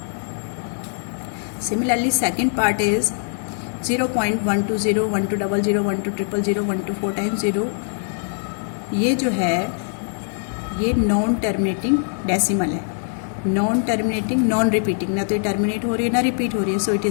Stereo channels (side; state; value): right; silent; digital silence